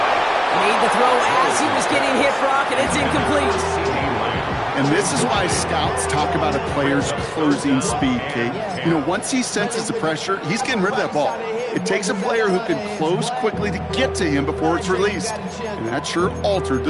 Made the throw as he was getting hit, Brock, and it's incomplete. And this is why scouts talk about a player's closing speed, Kate. You know, once he senses the pressure, he's getting rid of that ball. It takes a player who can close quickly to get to him before it's released. And that sure altered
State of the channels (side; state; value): both; identical; correlation 1.00